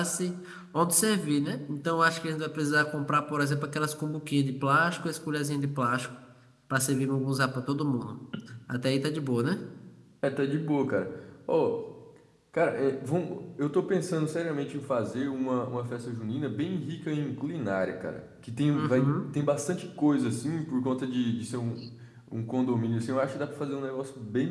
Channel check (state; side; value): identical; both; correlation 1.00